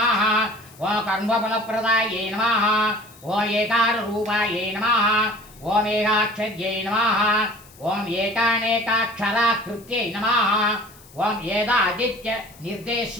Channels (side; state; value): left; noise; hiss, 24 dB below the sound